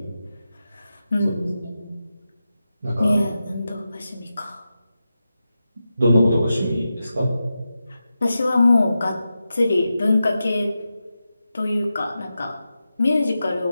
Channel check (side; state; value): both; inverted; correlation -0.91